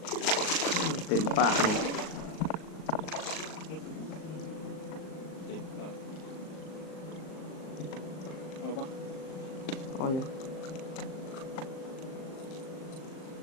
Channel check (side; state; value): right; late; 38 ms